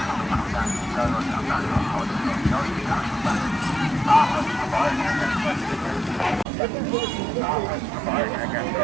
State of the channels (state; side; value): drops out; left; at 6.5 s